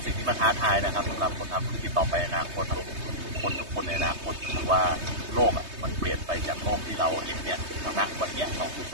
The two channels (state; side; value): late; left; 3.2 ms